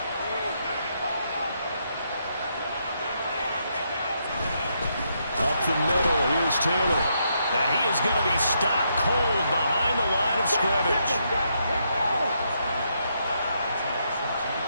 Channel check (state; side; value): inverted; both; correlation -0.78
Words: Up the middle, here's Taylor. Now he is going to be stopped cold behind the line of scrimmage.